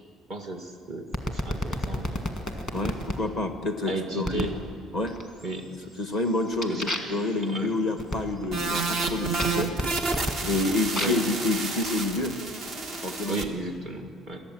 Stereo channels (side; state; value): both; normal; correlation 0.48